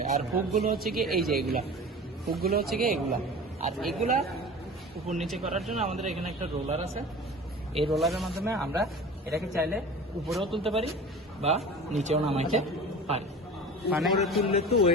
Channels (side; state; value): both; normal; correlation 0.37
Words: আর হুকগুলো হচ্ছে গিয়ে এই যে হুকগুলো হচ্ছে গিয়ে এগুলা। আর এগুলা উপর নিচে করার জন্য আমাদের এখানে একটা রোলার আছে। এই রোলারের মাধ্যমে আমরা এটাকে চাইলে উপরেও তুলতে পারি বা নিচেও নামাইতে পারি। মানে উপরে তুললে তো